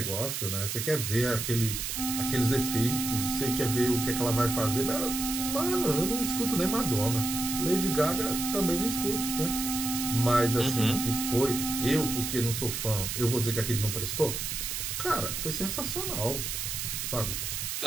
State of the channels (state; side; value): noise; right; hiss, 3 dB below the sound